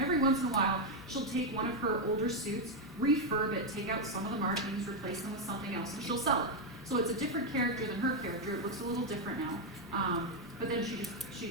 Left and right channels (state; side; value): normal; both; correlation 0.03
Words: every once in a while, she'll take one of her older suits, refurb it, take out some of the markings, replace them with something else, and she'll sell it. So it's a different character than her character. It looks a little different now, but then she